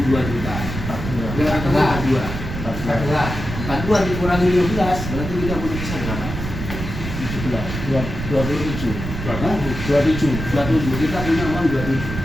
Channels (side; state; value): right; noise; rumble, 6 dB below the sound